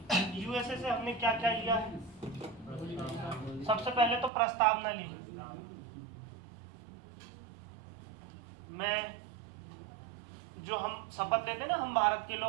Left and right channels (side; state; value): left; drops out; at 4.3 s